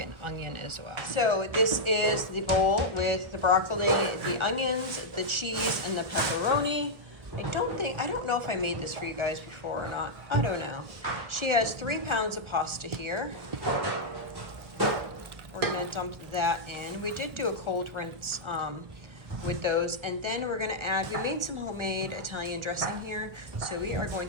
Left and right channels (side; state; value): left; late; 1.4 ms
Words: an onion as well. So this is the bowl with the broccoli, the onions, the cheese, and the pepperoni. I don't know if I made this for you guys before or not. I don't know. She has 3 pounds of pasta here. We're going to dump that in. We did do a cold rinse with those, and then we're going to add, we made some homemade Italian dressing here, so we are going